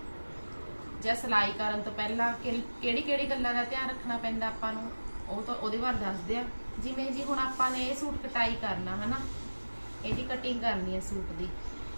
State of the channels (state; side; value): inverted; both; correlation -1.00